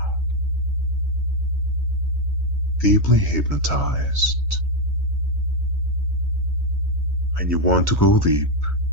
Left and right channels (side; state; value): both; normal; correlation 0.04